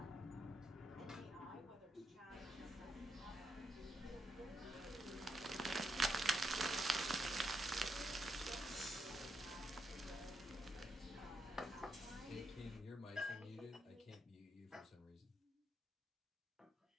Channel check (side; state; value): both; normal; correlation 0.81